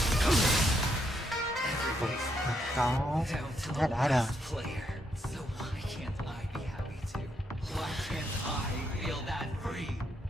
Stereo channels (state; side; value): normal; both; correlation 0.77